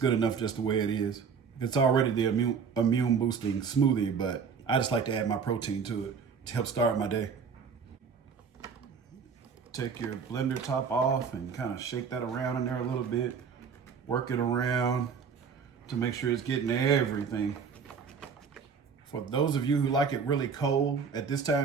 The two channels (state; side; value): quieter; left; 6.1 dB